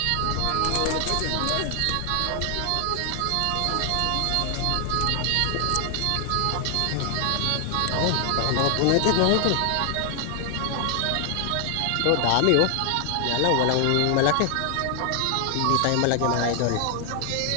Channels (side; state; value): both; different; correlation 0.00